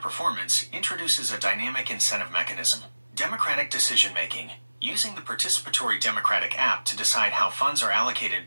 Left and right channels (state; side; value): inverted; both; correlation -1.00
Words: introduces a dynamic incentive mechanism. Democratic decision-making. Using the participatory democratic app to decide how funds are allocated